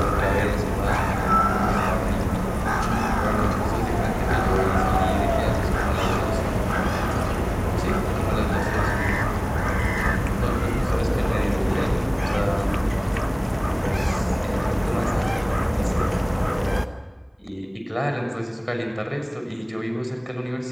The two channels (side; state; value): both; identical; correlation 1.00